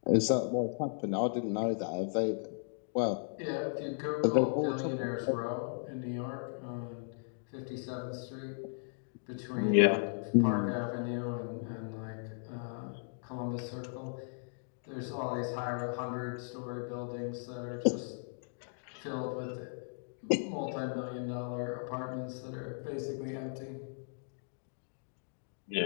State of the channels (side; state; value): right; silent; digital silence